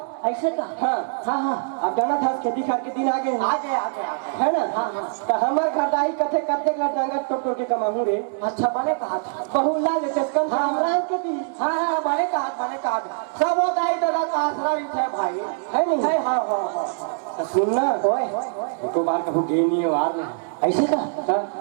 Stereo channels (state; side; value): silent; left; digital silence